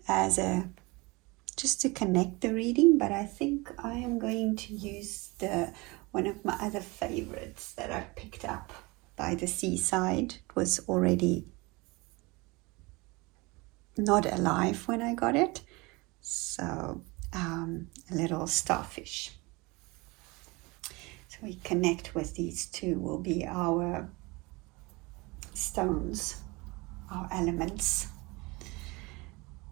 just to connect the reading, but I think I am going to use one of my other favorites that I picked up by the seaside. It was already not alive when I got it, so a little starfish. So we connect with these two, will be our stones, our elements.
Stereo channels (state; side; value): quieter; left; 24.9 dB